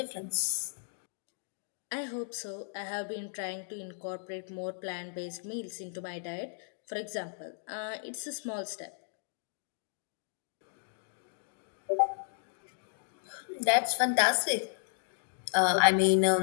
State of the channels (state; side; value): silent; right; digital silence